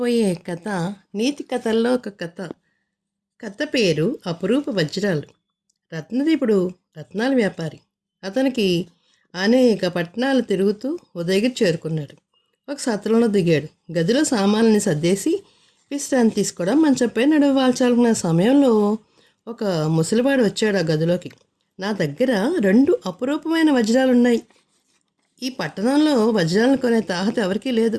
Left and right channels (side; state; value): both; identical; correlation 1.00